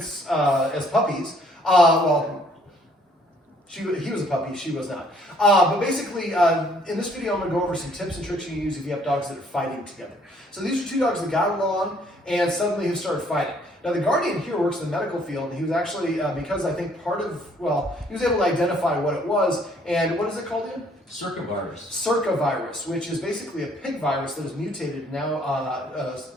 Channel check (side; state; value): both; normal; correlation 0.63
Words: as puppies. Well, he was a puppy, she was not. But basically, in this video, I'm going to go over some tips and tricks you can use if you have dogs that are fighting together. So these are two dogs that got along and suddenly have started fighting. Now the guardian here works in the medical field, and he was actually, because I think he was able to identify what it was, and what is it called again? Circovirus, which is basically a pig virus that is mutated now,